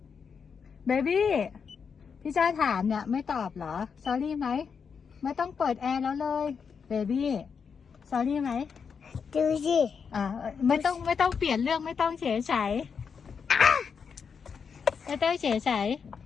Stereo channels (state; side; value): quieter; right; 6.2 dB